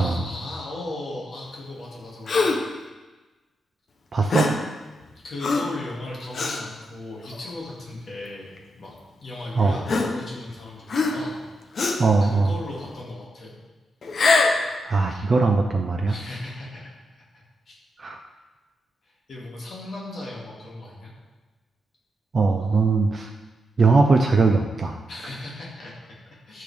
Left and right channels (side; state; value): both; normal; correlation 0.84